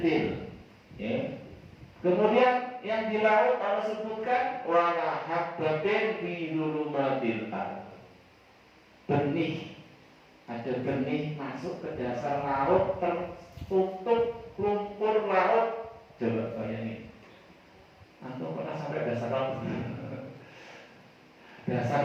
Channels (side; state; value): both; identical; correlation 1.00